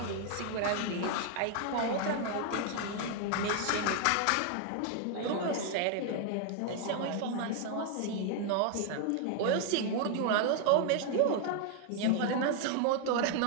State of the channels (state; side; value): different; both; correlation 0.00